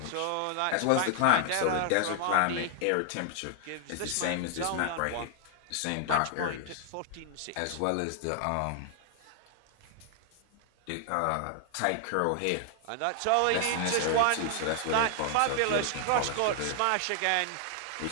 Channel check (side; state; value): both; different; correlation 0.00